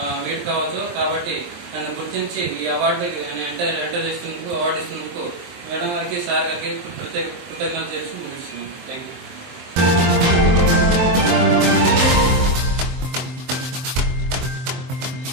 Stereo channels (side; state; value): left; late; 23 ms